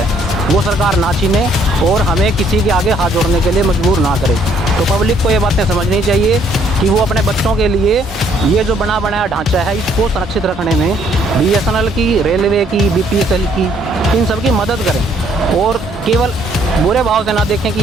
वो सरकार ना छीने और हमें किसी के आगे हाथ जोड़ने के लिए मजबूर ना करे। तो पब्लिक को ये बातें समझनी चाहिए कि वो अपने बच्चों के लिए ये जो बना बनाया ढांचा है इसको संरक्षित रखने में बीएसएनएल की, रेलवे की, बीपीएसएल की, इन सब की मदद करें और केवल बुरे भाव से ना देखें कि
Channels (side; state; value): both; normal; correlation 0.65